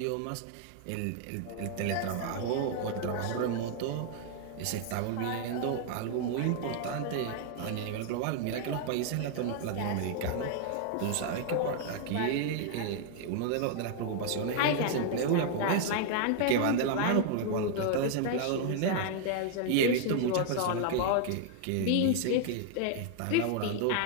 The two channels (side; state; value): both; different; correlation 0.00